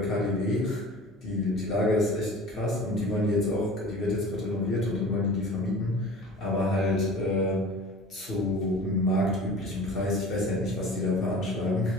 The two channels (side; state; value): both; normal; correlation 0.41